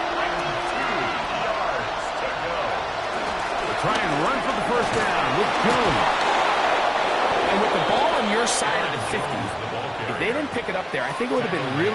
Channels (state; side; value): identical; both; correlation 1.00